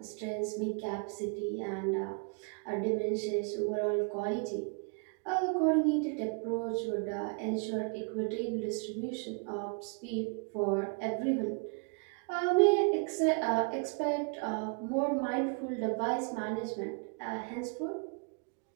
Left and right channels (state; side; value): quieter; left; 36.4 dB